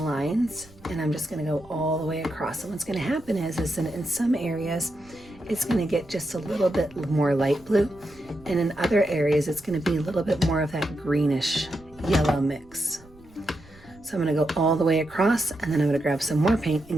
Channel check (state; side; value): noise; right; rumble, 25 dB below the sound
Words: lines, and I'm just going to go all the way across. And what's going to happen is in some areas, it's going to get just a little bit more light blue. And in other areas, it's going to be a little bit more of that greenish yellow mix. So I'm going to go all the way across, and then I'm going to grab some more paint